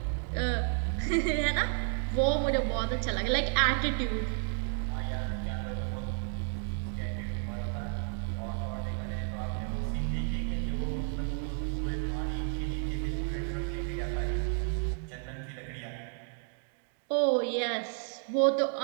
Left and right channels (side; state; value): left; silent; 56 dB below the other